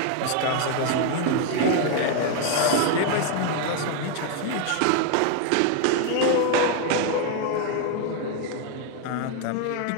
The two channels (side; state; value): both; different; correlation 0.01